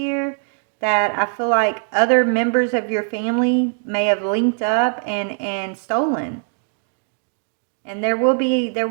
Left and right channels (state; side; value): silent; left; digital silence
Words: that I feel like other members of your family may have linked up and stolen. And there will